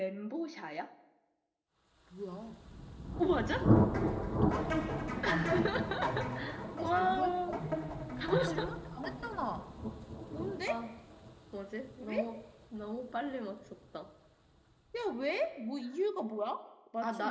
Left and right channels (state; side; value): identical; both; correlation 1.00